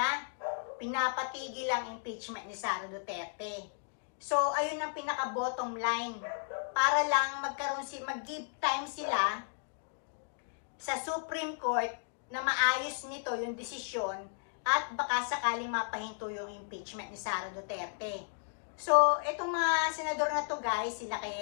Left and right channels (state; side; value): silent; right; digital silence